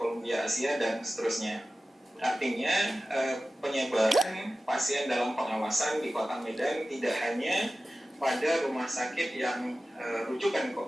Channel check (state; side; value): normal; both; correlation 0.95